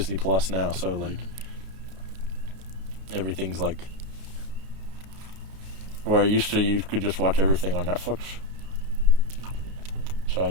Plus now, so like everything's like where used to you could just watch everything on Netflix.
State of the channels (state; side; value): late; left; 32 ms